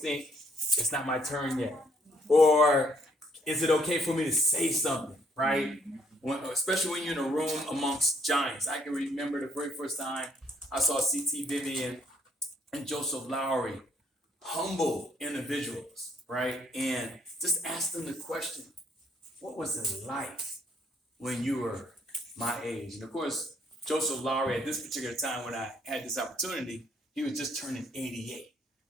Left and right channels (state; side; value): normal; both; correlation 0.67